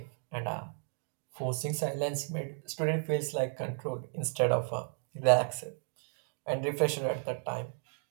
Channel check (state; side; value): silent; left; 55 dB below the other